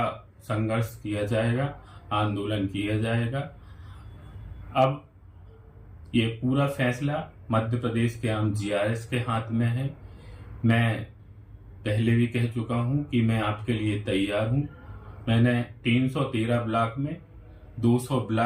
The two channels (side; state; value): both; identical; correlation 1.00